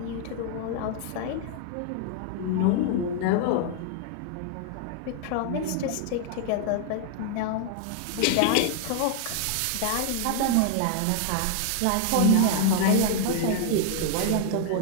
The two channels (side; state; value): both; different; correlation 0.00